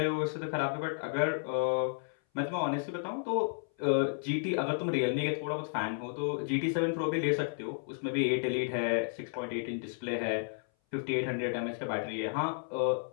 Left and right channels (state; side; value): silent; right; 56 dB below the other